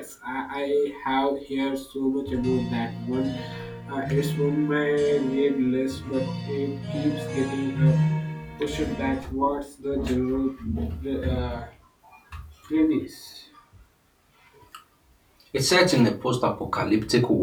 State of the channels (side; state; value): both; identical; correlation 1.00